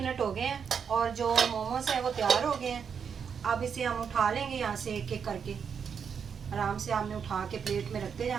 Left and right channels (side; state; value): left; quieter; 6.9 dB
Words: हो गए हैं और जो मोमोज़ हैं वो तैयार हो गए हैं। अब इसे हम उठा लेंगे यहाँ से एक एक करके। आराम से हमने उठा के प्लेट में रखते